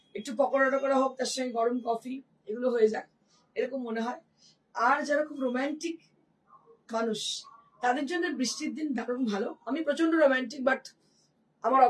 একটু পকোড়া টকোড়া হোক, তার সঙ্গে গরম কফি, এগুলো হয়ে যায়, এরকম মনে হয়। আর যারা খুব রোম্যান্টিক মানুষ, তাদের জন্য বৃষ্টির দিন দারুণ ভালো। আমি প্রচন্ড রোম্যান্টিক, বাট আমার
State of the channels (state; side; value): identical; both; correlation 1.00